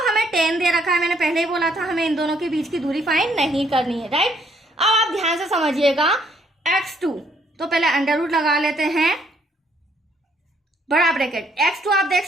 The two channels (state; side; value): normal; both; correlation 0.68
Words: हमें 10 दे रखा है, मैंने पहले ही बोला था हमें इन दोनों के बीच की दूरी फाइंड नहीं करनी है, राइट। अब आप ध्यान से समझिएगा, x2 तो पहले अंडर रूट लगा लेते हैं, बड़ा ब्रैकेट, x2 आप देख